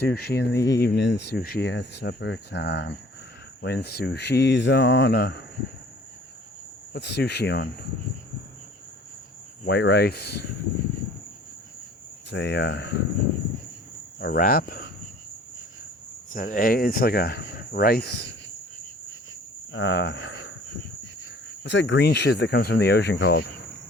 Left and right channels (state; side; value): normal; both; correlation 0.51